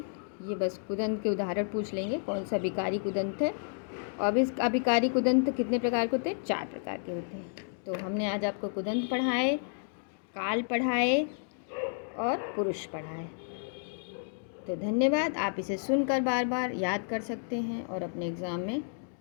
ये बस कुदंत के उदाहरण पूछ लेंगे कौन सा विकारी कुदंत है। और इस अभिकारी कुदंत कितने प्रकार के होते हैं? 4 प्रकार के होते हैं। तो हमने आज आपको कुदंत पढ़ाए, काल पढ़ाए और पुरुष पढ़ाए। तो धन्यवाद। आप इसे सुनकर बार बार याद कर सकते हैं और अपने एग्ज़ाम में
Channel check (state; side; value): silent; right; digital silence